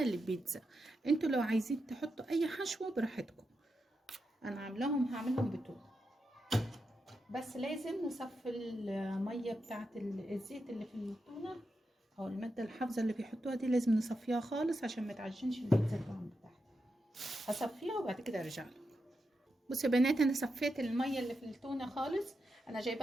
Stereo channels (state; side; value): normal; both; correlation 0.87